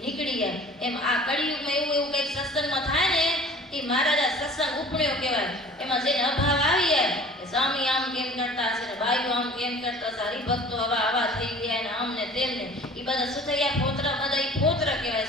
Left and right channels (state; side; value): normal; both; correlation 0.46